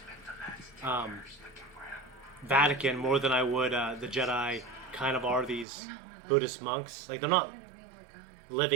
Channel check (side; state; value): left; drops out; at 5.7 s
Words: Vatican more than I would the Jedi kind of are these Buddhist monks. Like they're not